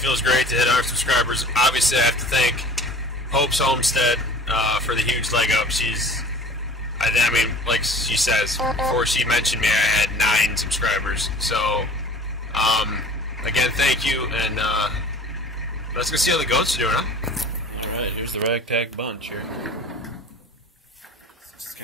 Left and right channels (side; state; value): both; normal; correlation 0.44